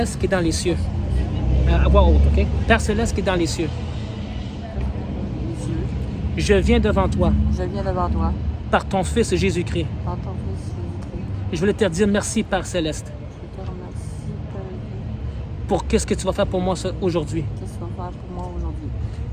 qui est dans les cieux. À voix haute, OK? Père Céleste qui est dans les cieux. Je viens devant toi. Je viens devant toi. Par ton Fils Jésus-Christ. Par ton Fils Jésus-Christ. Et je voulais te dire merci, Père Céleste, Je te remercie, Père. pour qu'est-ce que tu vas faire pour moi aujourd'hui. Qu'est-ce que tu vas faire pour moi aujourd'hui?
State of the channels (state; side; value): identical; both; correlation 1.00